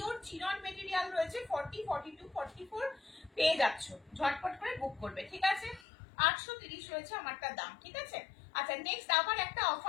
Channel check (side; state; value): right; drops out; at 5.9 s